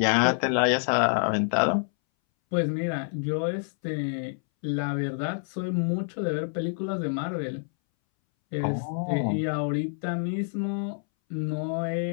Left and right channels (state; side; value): silent; right; 60 dB below the other